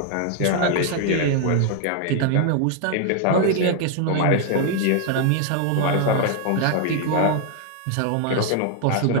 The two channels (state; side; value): different; both; correlation 0.00